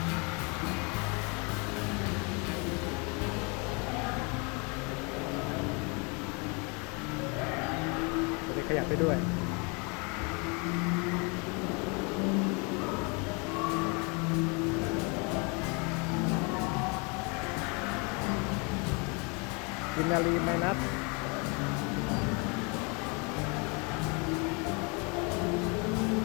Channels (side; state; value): right; quieter; 31.9 dB